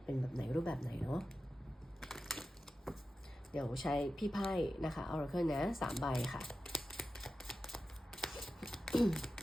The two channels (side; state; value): both; normal; correlation 0.92